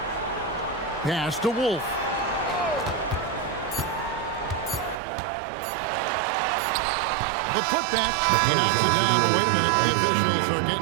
Pass to Wolf. The putback. He knocks it down, but wait a minute. The officials are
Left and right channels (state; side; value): drops out; left; at 5.0 s